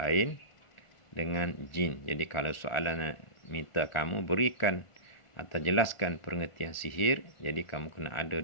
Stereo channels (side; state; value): right; late; 1.4 ms